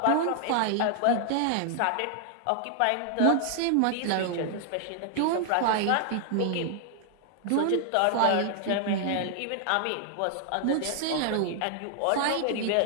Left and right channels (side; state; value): both; different; correlation 0.00